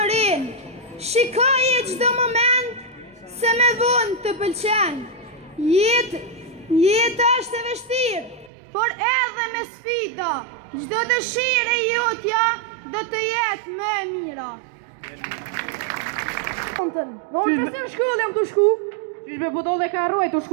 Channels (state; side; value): drops out; left; at 8.5 s